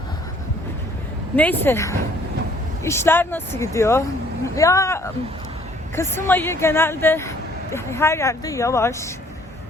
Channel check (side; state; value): both; normal; correlation 0.60